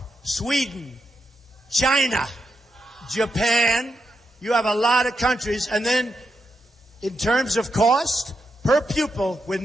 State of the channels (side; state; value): both; normal; correlation 0.85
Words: Sweden, China, Japan. You have a lot of countries, and then in terms of cost, per pupil, we're